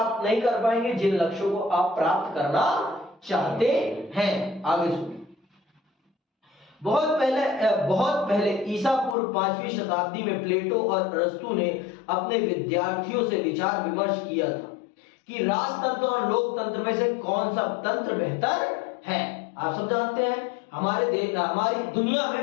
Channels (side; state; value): right; drops out; at 9.2 s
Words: नहीं कर पाएंगे जिन लक्ष्यों को आप प्राप्त करना चाहते हैं। आगे सुनिए। बहुत पहले ईसा पूर्व 5वीं शताब्दी में प्लेटो और अरस्तु ने अपने विद्यार्थियों से विचार विमर्श किया था कि राजतंत्र और लोकतंत्र में से कौन सा तंत्र बेहतर है। आप सब जानते हैं हमारी दुनिया